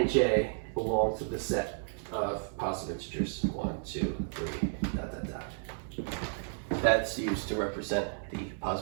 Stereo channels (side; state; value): left; silent; 56 dB below the other